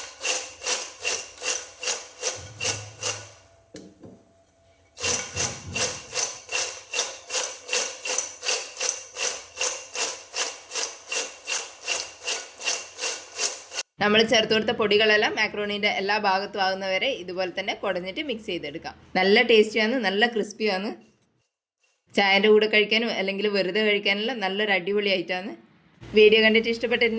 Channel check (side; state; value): both; identical; correlation 1.00